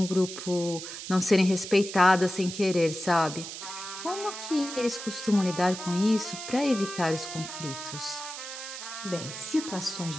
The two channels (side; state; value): right; noise; hiss, 9 dB below the sound